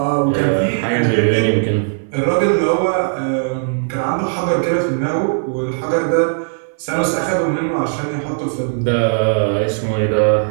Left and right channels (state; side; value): silent; left; 58 dB below the other